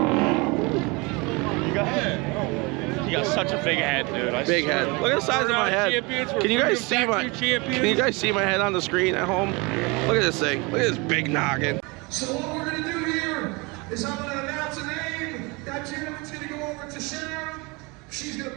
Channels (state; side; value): quieter; left; 26.9 dB